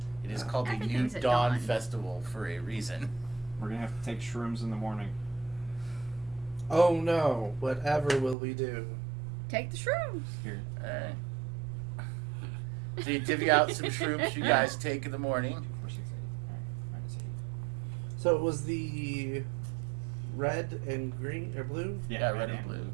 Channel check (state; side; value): drops out; left; at 8.3 s